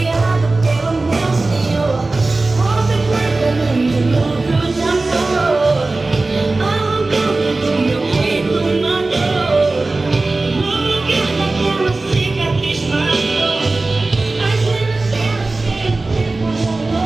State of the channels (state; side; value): quieter; left; 3.3 dB